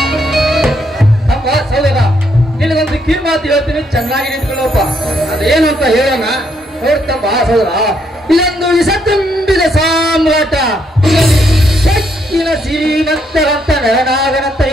ಅಪ್ಪ ಸಹೋದರ, ನಿನಗೊಂದು ಕಿರ್ಮಾತು ಹೇಳ್ತೀನಿ, ಚೆನ್ನಾಗಿ ನಿಂತ್ಕೊಳ್ಳಪ್ಪ. ಅದೇನು ಅಂತ ಹೇಳೋಣ. ನೋಡ್ತಪ್ಪ ಸಹೋದರ, ಇದೊಂದು ವಿಷ ತುಂಬಿದ ಸಾಮ್ರಾಟ. ಶಕ್ತಿನ ಶ್ರೀಮಂತರಂತ ನರನಾಗನಂತ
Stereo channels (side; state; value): both; normal; correlation 0.74